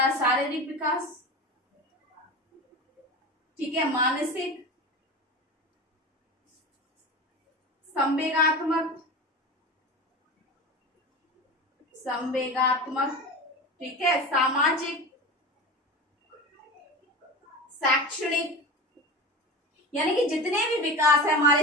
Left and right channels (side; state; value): both; normal; correlation 0.29